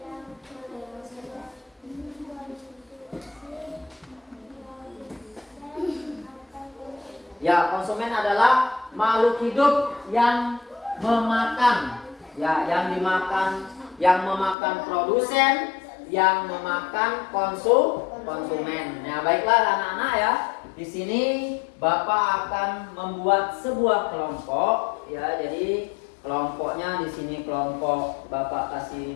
Ya, konsumen adalah makhluk hidup yang memakan, ya, yang memakan produsen, yang memakan konsumen. Nah, baiklah anak-anak ya. Di sini Bapak akan membuat sebuah kelompok, ya. Jadi kelompoknya di sini kelompok Bapak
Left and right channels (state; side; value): drops out; right; at 14.6 s